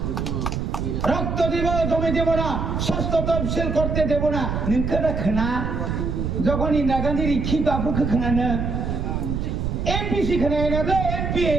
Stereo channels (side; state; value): right; noise; rumble, 1 dB below the sound